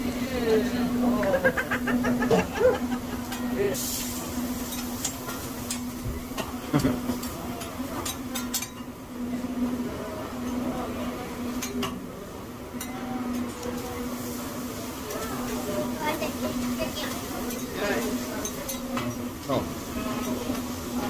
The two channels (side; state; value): both; identical; correlation 1.00